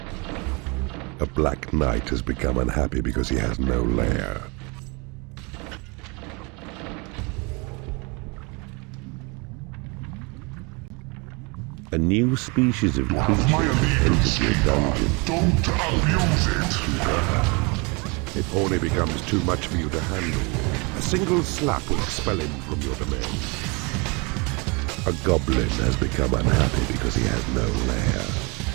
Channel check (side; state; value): left; quieter; 29.7 dB